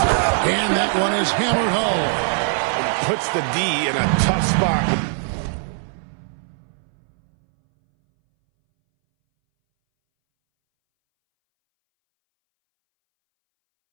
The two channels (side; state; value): left; silent; 63 dB below the other